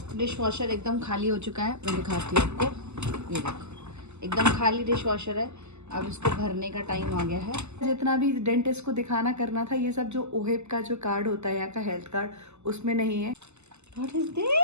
dish washer एकदम खाली हो चुका है। मैं दिखाती हूँ आपको, ये देखो एकदम खाली डिश वॉशर है। अब इसको भरने का टाइम आ गया है। जितना भी डेंटिस्ट को दिखाना करना था, ये सब जो ओहेब का जो कार्ड होता है यहाँ का हेल्थ कार्ड, उसमें नहीं है। What is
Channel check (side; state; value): left; late; 0.82 ms